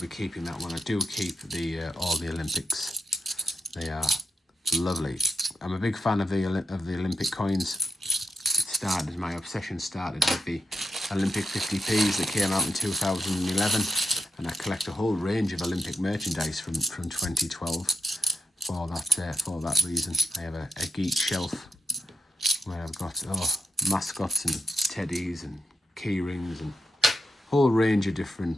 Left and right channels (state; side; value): normal; both; correlation 0.81